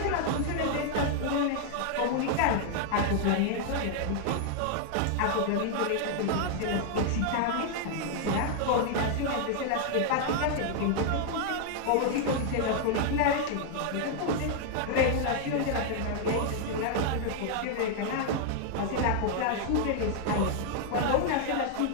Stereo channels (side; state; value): both; different; correlation 0.00